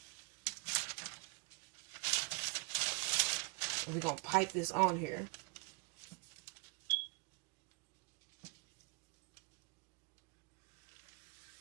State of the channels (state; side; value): quieter; left; 28.4 dB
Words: And we're going to pipe this on here.